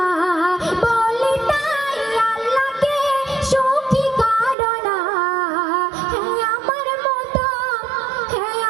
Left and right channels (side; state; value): left; drops out; at 4.5 s